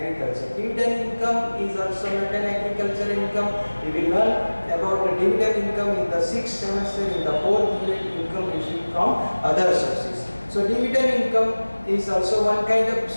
Dividend income is also not an agriculture income. We will learn about the dividend income in the 6th semester in the 4th unit, income received from other sources. So dividend income is also one kind of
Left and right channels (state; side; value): inverted; both; correlation -1.00